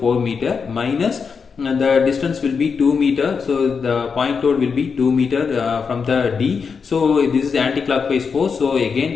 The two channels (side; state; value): right; quieter; 5.7 dB